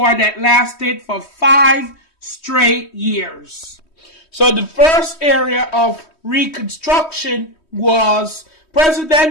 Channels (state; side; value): late; right; 3.1 ms